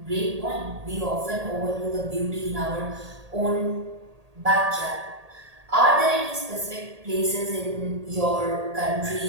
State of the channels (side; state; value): left; late; 1.8 ms